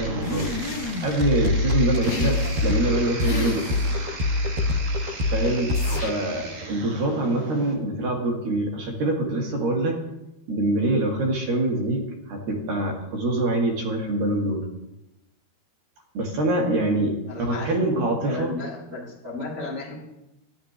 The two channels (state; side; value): late; left; 12 ms